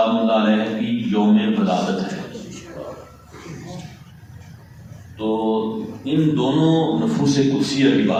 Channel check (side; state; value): both; identical; correlation 1.00